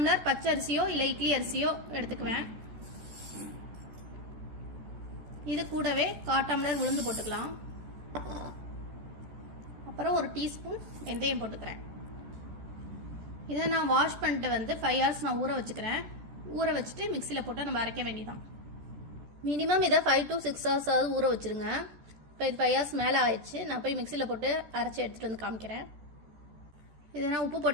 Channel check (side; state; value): left; late; 14 ms